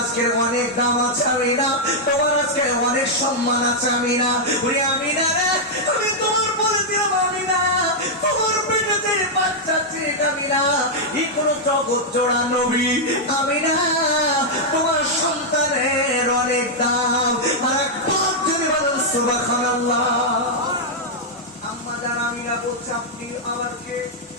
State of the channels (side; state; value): both; normal; correlation -0.04